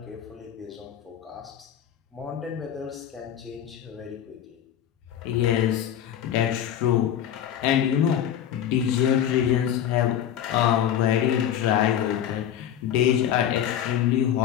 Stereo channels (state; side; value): quieter; right; 10.1 dB